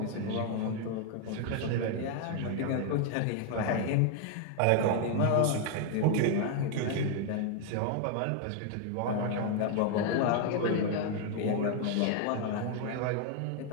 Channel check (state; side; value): different; both; correlation 0.00